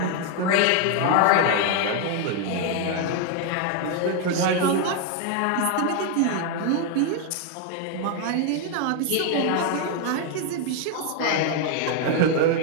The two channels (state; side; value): different; both; correlation 0.00